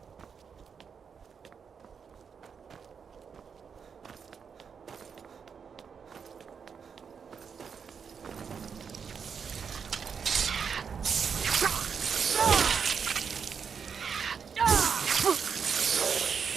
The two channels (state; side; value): quieter; left; 6.5 dB